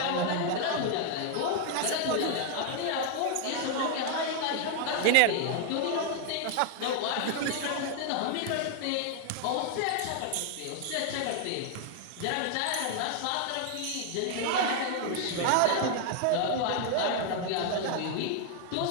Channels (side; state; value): both; different; correlation 0.00